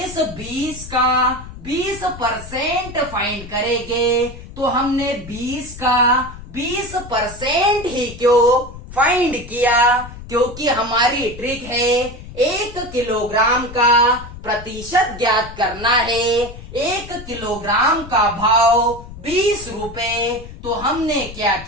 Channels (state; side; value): noise; left; rumble, 14 dB below the sound